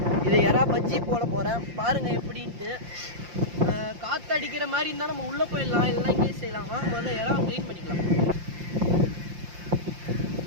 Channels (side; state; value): left; late; 5.7 ms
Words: இது எறா பஜ்ஜி போட போகிறேன், பாருங்கள் எப்படின்ட்டு. காற்று அடிக்கிற மாதிரி இருந்தால் நம்ம உள்ளே போயிடலாம், இல்லைனா இங்கே செய்யலாமா. முதல்ல எறா க்ளீன் பண்ணிக்கலாம்.